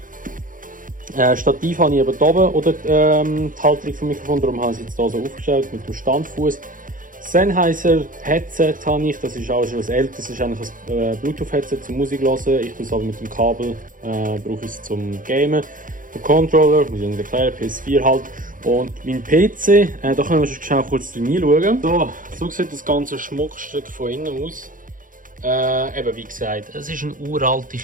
Stativ habe ich eben hier oben, oder die Halterung vom Mikrofon, darum habe ich es jetzt hier so aufgestellt mit dem Standfuß. Sennheiser Headset habe ich, das ist auch schon was älteres, das ist eigentlich ein Bluetooth-Headset zum Musik hören. Ich tue es aber mit dem Kabel, brauche ich es zum Gamen. Der Controller, muss ich Ihnen erklären, PS4 halt. Und mein PC, da können wir schon schnell kurz reinschauen. So sieht das ganze Schmuckstück von innen aus. Eben wie gesagt, es ist eine uralte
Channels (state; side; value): late; left; 0.39 ms